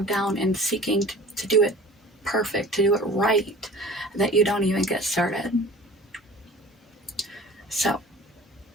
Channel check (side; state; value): both; normal; correlation 0.43